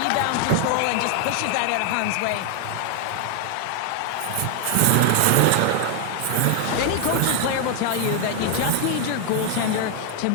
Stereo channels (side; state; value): both; different; correlation 0.00